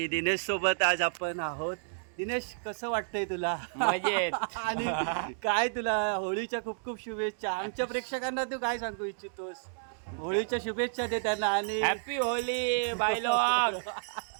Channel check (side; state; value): left; silent; digital silence